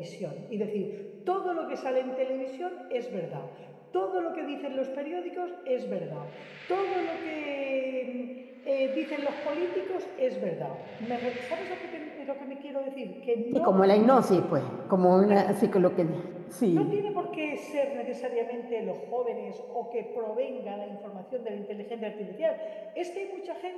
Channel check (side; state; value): both; identical; correlation 1.00